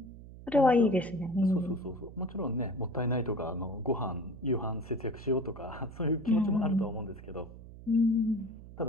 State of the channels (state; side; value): noise; right; hum, 16 dB below the sound